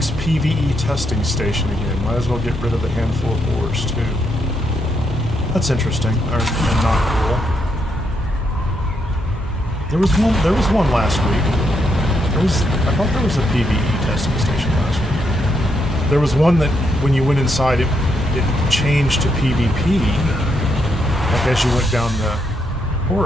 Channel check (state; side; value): normal; both; correlation 0.78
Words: PvE testing station again. Might as well get rid of a handful of ores too. That's interesting, and not cool. There was one last week. I thought there was a PvE testing station last week. There was one that, when you went inside, it changed to PvP, like as you went down the